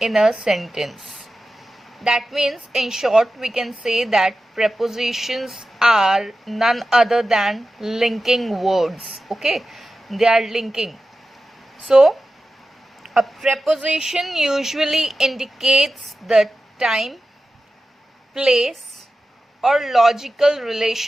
in a sentence. That means, in short, we can say that prepositions are none other than linking words. Okay, they are linking. So a preposition usually indicates the time, place, or logical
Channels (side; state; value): both; normal; correlation 0.93